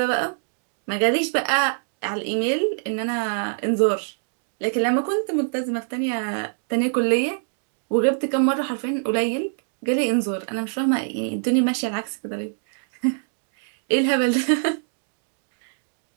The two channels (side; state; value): left; silent; digital silence